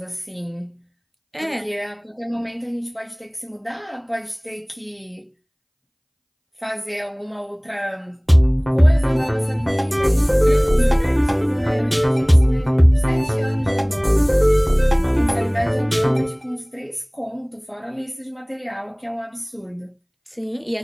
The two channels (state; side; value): identical; both; correlation 1.00